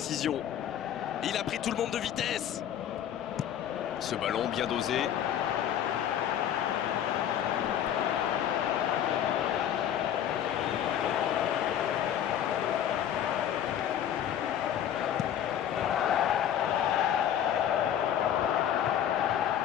Il a pris tout le monde de vitesse. Ce ballon bien dosé.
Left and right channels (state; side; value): quieter; right; 10.2 dB